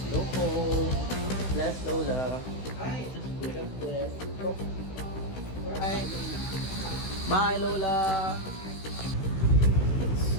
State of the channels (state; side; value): late; right; 16 ms